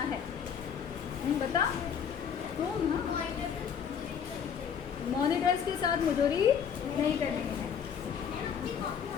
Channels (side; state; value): right; quieter; 7.6 dB